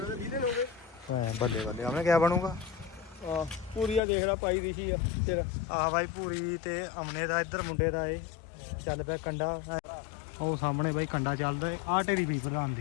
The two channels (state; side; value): drops out; right; at 4.0 s